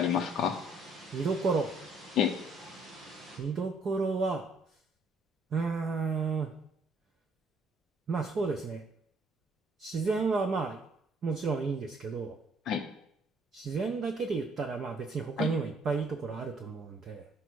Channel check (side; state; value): both; normal; correlation 0.63